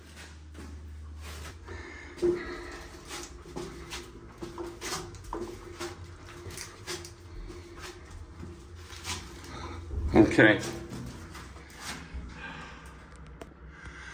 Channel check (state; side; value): identical; both; correlation 1.00